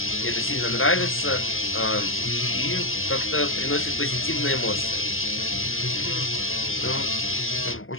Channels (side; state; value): right; late; 0.60 ms